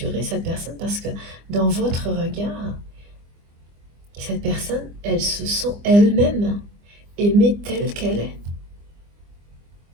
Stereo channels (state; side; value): late; left; 25 ms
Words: cette personne parce que dans votre regard, cette personne, elle se sent elle-même aimée telle qu'elle est.